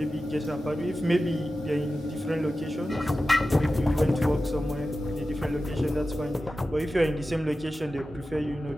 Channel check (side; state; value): both; normal; correlation 0.94